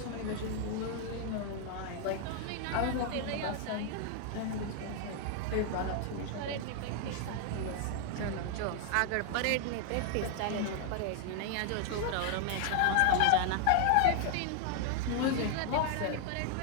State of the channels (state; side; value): different; both; correlation 0.00